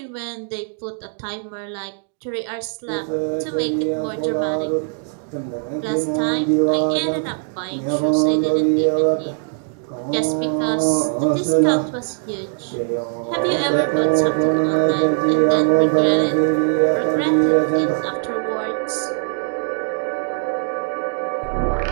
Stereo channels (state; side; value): silent; left; 58 dB below the other